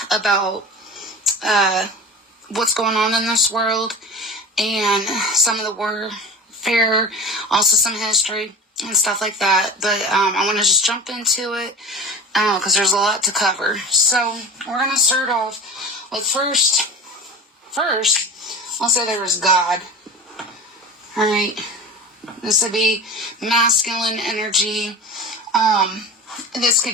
about what's going on in this world, and some of the warfare, also some history and stuff like that. But I want to just jump into it because there's a lot to cover. So we're going to start off with first, I'll say there was God. Alright, this would be masculine energy. This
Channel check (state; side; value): normal; both; correlation 0.33